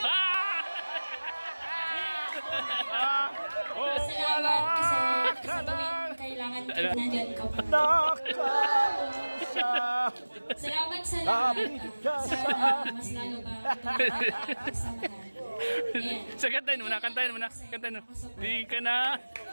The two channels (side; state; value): both; inverted; correlation -1.00